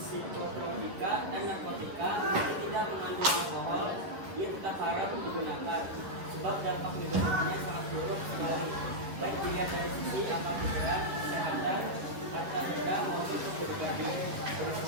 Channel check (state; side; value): late; left; 11 ms